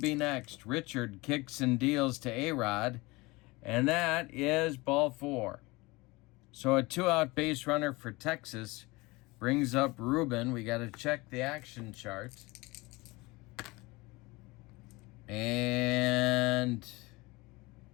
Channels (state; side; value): quieter; right; 23.1 dB